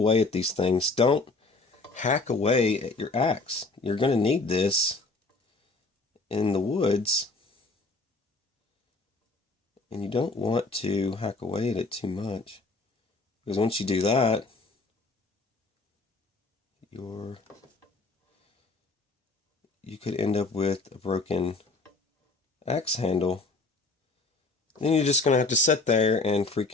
at these things, don't hack away at your axe. You're going to need this in the woods, and you don't want to hack away at it too much, because once you do that, you could end up with a broken axe handle. Then you're just going to have to sit there and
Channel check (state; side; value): quieter; right; 3.5 dB